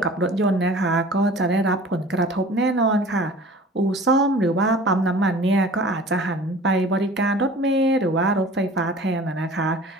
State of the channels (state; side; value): normal; both; correlation 0.44